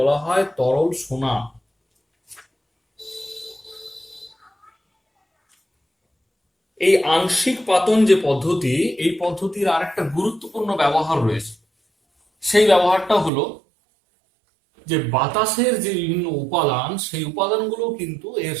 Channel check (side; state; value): left; drops out; at 13.3 s